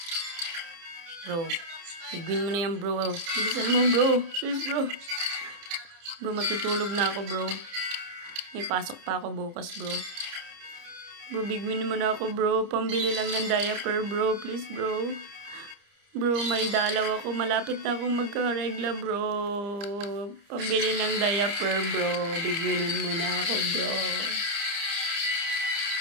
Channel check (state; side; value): late; left; 30 ms